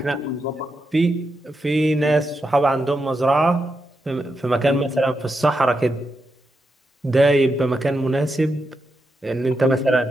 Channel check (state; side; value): normal; both; correlation 0.85